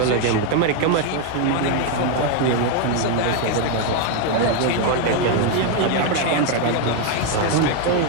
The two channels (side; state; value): both; different; correlation 0.01